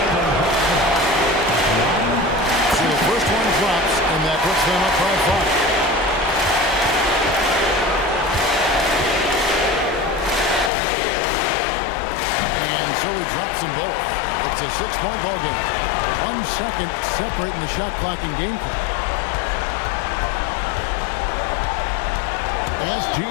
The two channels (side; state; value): right; drops out; at 10.7 s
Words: So the first one drops, and that puts them up by 5. And so he drops them both. It's a 6-point ball game. 1 second separating the shot clock and game clock.